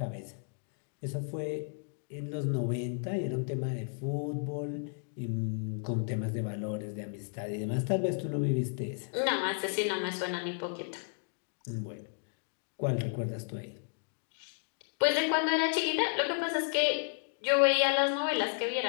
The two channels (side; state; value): right; silent; 56 dB below the other